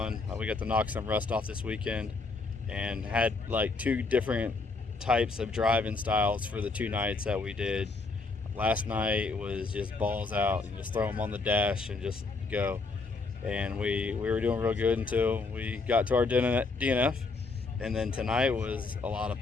We got to knock some rust off this weekend, and had like 2 different types of driving styles for the 2 nights that we did. Last night was just balls out and just throw them on the dash and just go. And we were doing real good until we got to our DNF. And then tonight was a lot of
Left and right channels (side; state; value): right; quieter; 3.9 dB